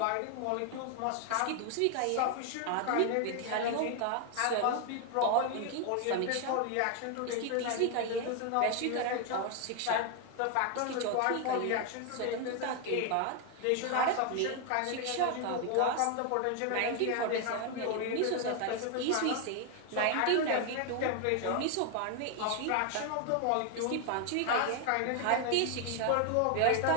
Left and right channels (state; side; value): different; both; correlation 0.01